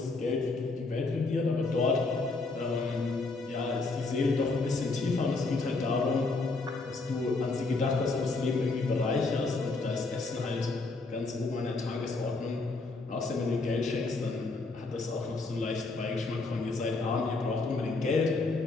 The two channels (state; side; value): quieter; right; 3.6 dB